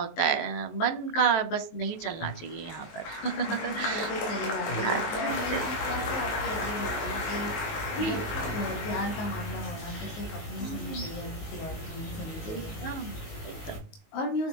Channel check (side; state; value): right; late; 19 ms